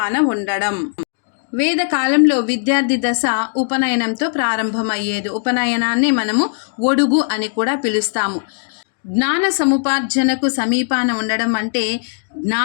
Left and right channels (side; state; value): right; silent; digital silence